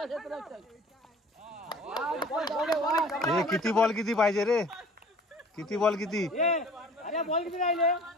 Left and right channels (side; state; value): both; normal; correlation 0.48